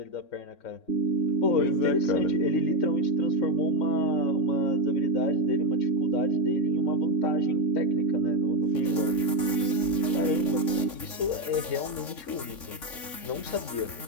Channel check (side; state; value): right; late; 3.5 ms